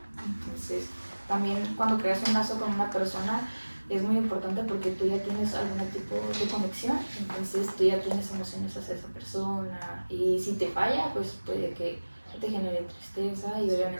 Entonces, también cuando creas un lazo con una persona es muy importante porque tú ya tienes algún tipo de conexión, entonces tú ya tienes emociones hacia esa persona y si te falla, pues puede que te genere tristeza y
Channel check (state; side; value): inverted; both; correlation -1.00